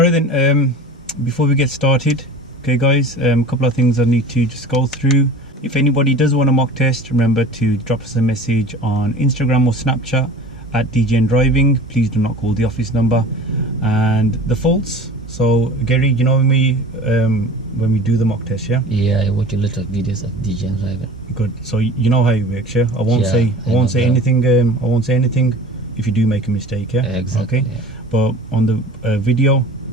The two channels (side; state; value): both; normal; correlation 0.40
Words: then, before we get started, okay guys, a couple of things I need to just go through. If anybody does want a mock test, remember to drop us a message on Instagram or Snapchat at DJN Driving. Please do not call the office number. And the faults, so Gehrri, you know when we do the mock test, yeah? Yeah, I watch a lot of videos of DJ and driving. Good. So you know how it works, yeah? I won't Yeah, say I know anything. I won't say anything if you do make a mistake, yeah? Exactly. Okay. Yeah. But on the video,